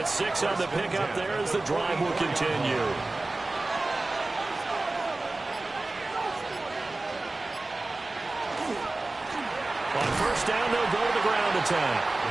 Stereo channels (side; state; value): left; quieter; 3.1 dB